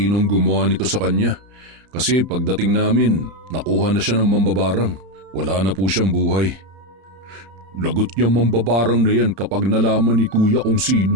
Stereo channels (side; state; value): left; late; 31 ms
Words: gumawa nito sa kanya. Kasi pagdating namin, nakuha na siya ng mambabarang. Wala na po siyang buhay. Lagot niya mambabarang na yan kapag nalaman ni Kuya kung sino